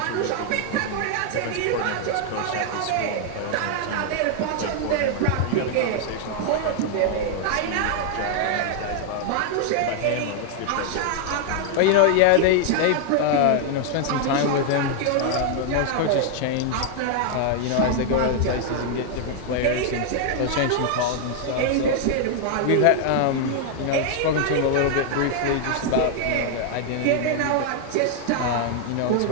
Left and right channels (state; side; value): different; both; correlation 0.00